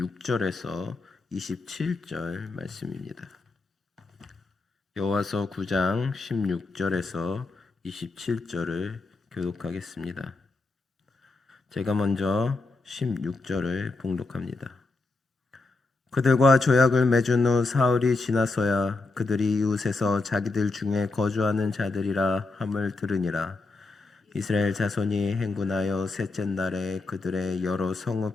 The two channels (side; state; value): right; quieter; 3.5 dB